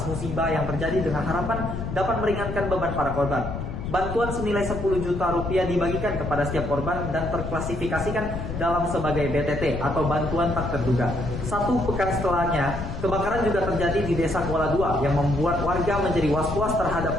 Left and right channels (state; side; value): noise; left; rumble, 6 dB below the sound